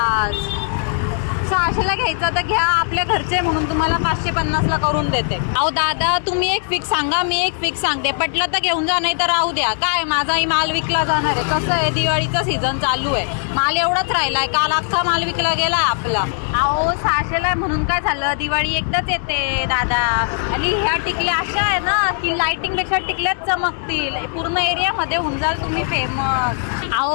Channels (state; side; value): silent; right; 65 dB below the other